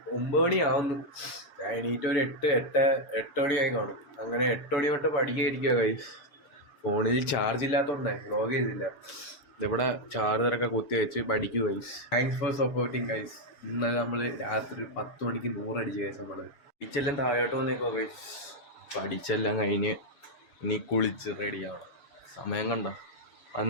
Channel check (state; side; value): late; right; 6.9 ms